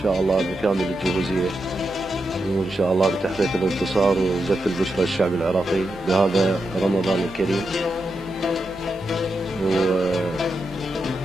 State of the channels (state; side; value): normal; both; correlation 0.86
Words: شاء الله بكامل الجهوزية، وإن شاء الله بتحقيق الانتصار وزف البشرى الشعب العراقي بهذا رمضان الكريم.